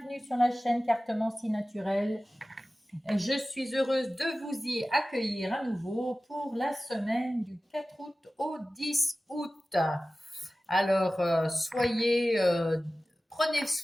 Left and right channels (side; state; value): both; normal; correlation 0.96